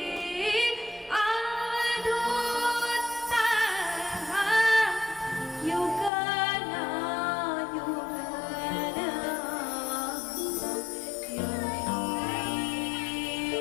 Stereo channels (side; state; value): right; drops out; at 6.1 s